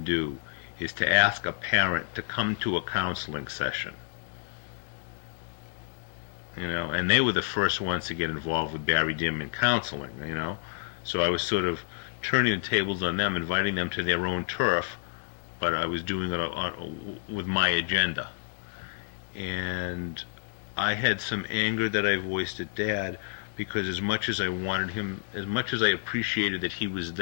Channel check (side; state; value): right; silent; digital silence